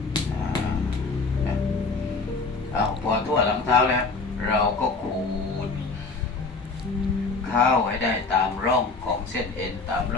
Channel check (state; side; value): quieter; right; 4.0 dB